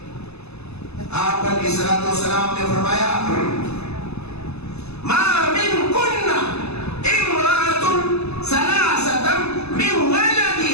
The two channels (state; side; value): late; right; 0.79 ms